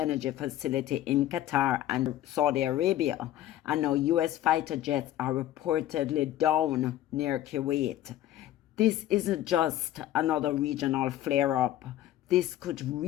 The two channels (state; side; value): quieter; right; 13.2 dB